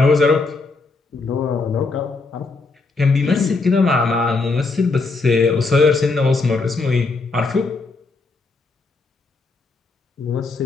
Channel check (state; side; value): quieter; right; 3.9 dB